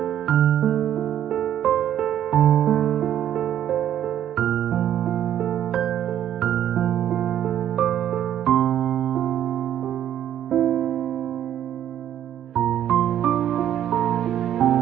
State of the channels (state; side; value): quieter; left; 10.8 dB